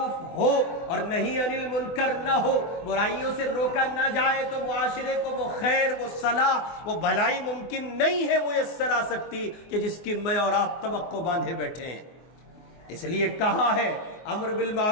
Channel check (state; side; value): late; right; 24 ms